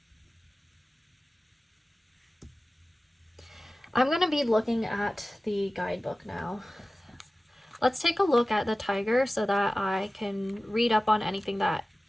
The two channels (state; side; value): normal; both; correlation 0.96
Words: I'm going to be looking at the guidebook now. Let's take a look at the tiger so that I can read up on anything that